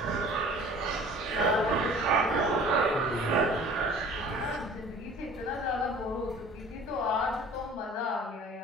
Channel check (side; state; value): both; normal; correlation 0.47